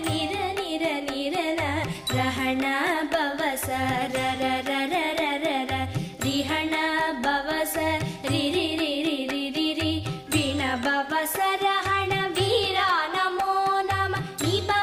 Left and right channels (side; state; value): both; identical; correlation 1.00